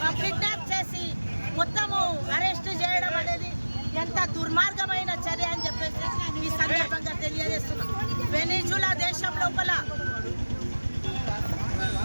కిడ్నాప్ చేసి మొత్తము అరెస్ట్ చేయడం అనేది ఎంత దుర్మార్గమైన చర్య అని చెప్పేసి ఈ సందర్భంగా తెలియజేస్తున్నాం. వెనిజులా దేశం లోపల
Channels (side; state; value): both; inverted; correlation -1.00